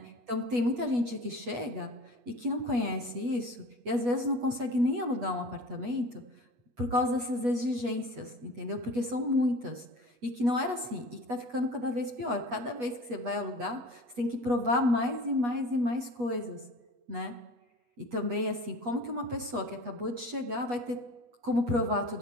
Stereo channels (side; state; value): left; late; 8.3 ms